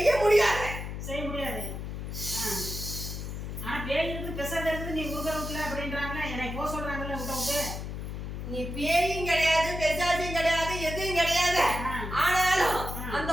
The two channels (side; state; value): left; noise; hum, 6 dB below the sound